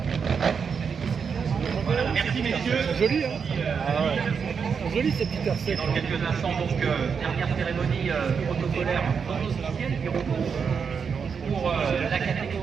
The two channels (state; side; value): quieter; left; 6.2 dB